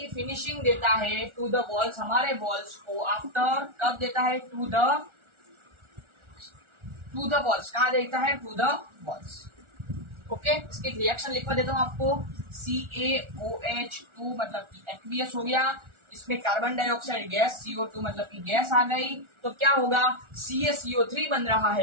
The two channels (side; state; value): left; late; 1.4 ms